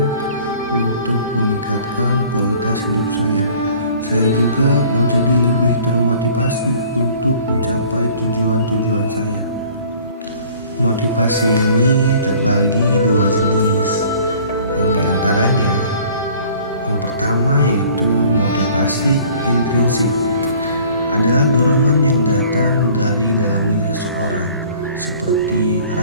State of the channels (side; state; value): both; inverted; correlation -0.52